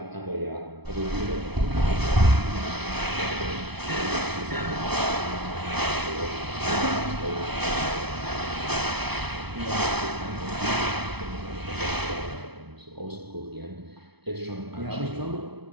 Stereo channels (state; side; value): late; left; 0.99 ms